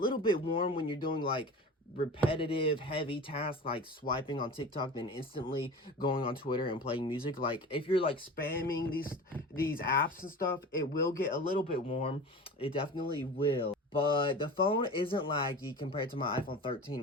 bit warm when you're doing like repetitive heavy tasks like swiping on TikTok, then instantly going on Twitter and playing music. Like, if you're like spamming these apps and stuff, it will get a little bit warm. It definitely will. But the phone isn't laggy compared to my iPhone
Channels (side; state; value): both; normal; correlation 0.35